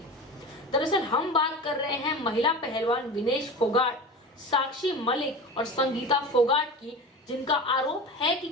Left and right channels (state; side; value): normal; both; correlation 0.31